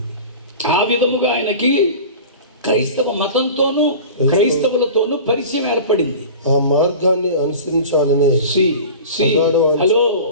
ఆ విధముగా ఆయనకి క్రైస్తవ మతంతోనూ క్రైస్తవులతోనూ పరిచయం ఏర్పడింది. ఆ మార్గాన్ని అనుసరించాలనే హలో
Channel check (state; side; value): inverted; both; correlation -0.36